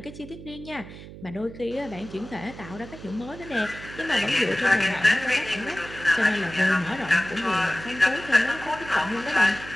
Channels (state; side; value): noise; right; hum, 15 dB below the sound